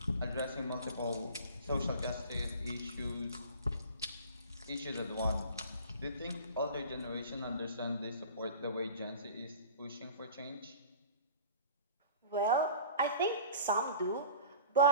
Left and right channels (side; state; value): both; inverted; correlation -0.42